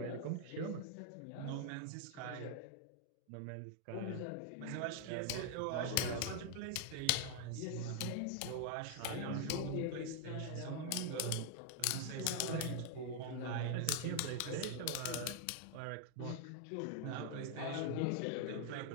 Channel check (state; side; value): different; both; correlation 0.00